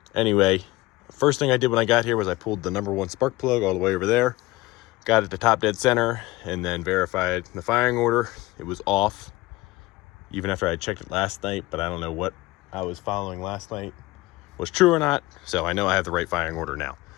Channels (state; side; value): quieter; right; 19.7 dB